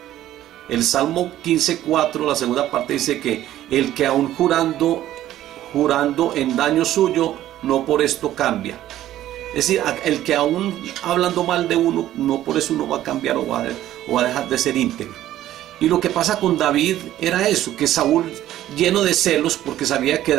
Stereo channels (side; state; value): left; quieter; 13.2 dB